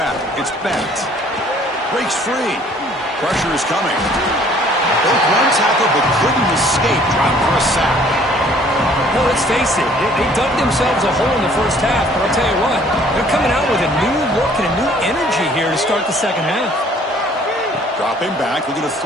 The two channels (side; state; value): both; normal; correlation 0.57